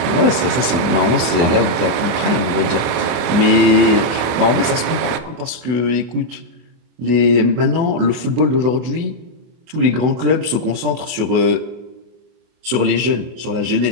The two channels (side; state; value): left; late; 24 ms